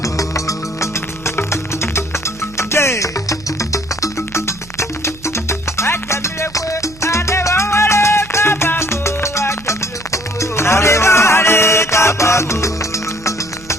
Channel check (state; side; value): noise; right; hum, 20 dB below the sound